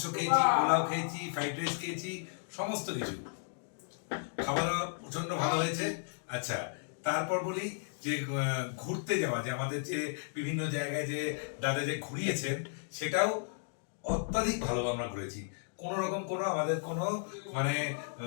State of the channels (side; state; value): right; silent; digital silence